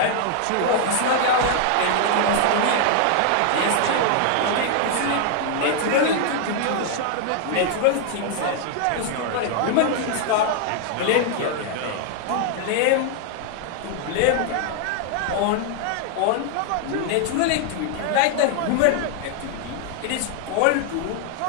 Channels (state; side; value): different; both; correlation 0.00